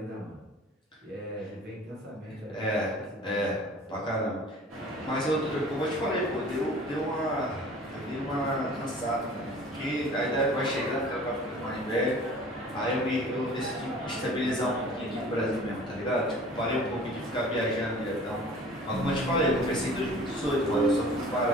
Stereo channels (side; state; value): both; normal; correlation 0.45